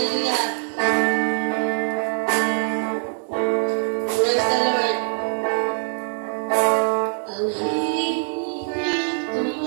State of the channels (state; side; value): silent; left; digital silence